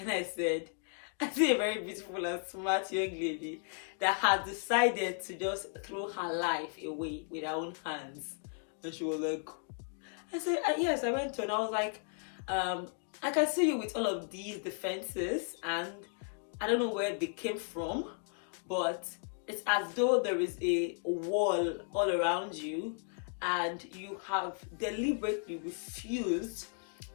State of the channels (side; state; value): right; silent; 55 dB below the other